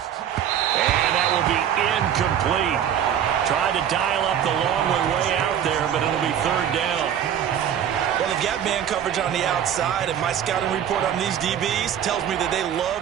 And that will be incomplete. Tried to dial up the long way out there, but it'll be third down. Well, they've got man coverage on the outside, and my scouting report on these DBs tells me that they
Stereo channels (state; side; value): quieter; left; 9.5 dB